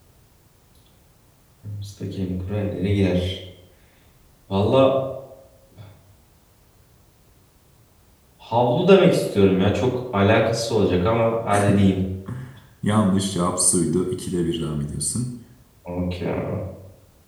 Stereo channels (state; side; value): identical; both; correlation 1.00